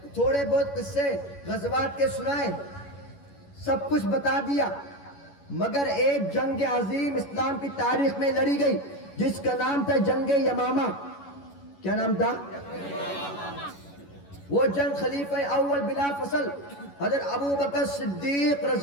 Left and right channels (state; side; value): late; right; 11 ms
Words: تھوڑے بہت قصے غزوات کے سنائے، سب کچھ بتا دیا، مگر ایک جنگ عظیم اسلام کی تاریخ میں لڑی گئی جس کا نام تھا جنگ یمامہ۔ کیا نام تھا؟ وہ جنگ خلیفہ اول بلا فصل حضرت ابو بکر صدیق